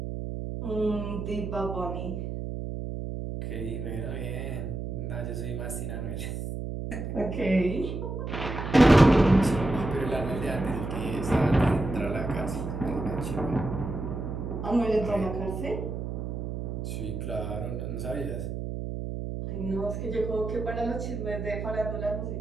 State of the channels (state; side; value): noise; right; hum, 5 dB below the sound